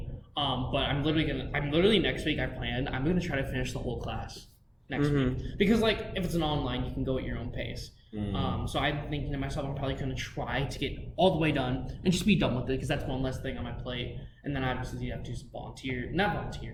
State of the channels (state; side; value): identical; both; correlation 1.00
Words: But I'm literally next week I'm gonna try to finish the whole class next week. Because if it's an online, you can go at your own pace. So I'm thinking to myself, I'm probably gonna try to get all the way done and just be done with it, because that's one less thing on my plate. And then obviously you have to